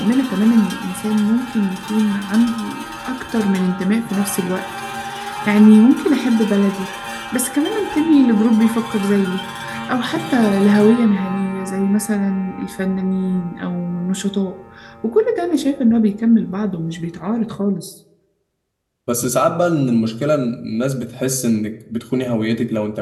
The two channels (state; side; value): identical; both; correlation 1.00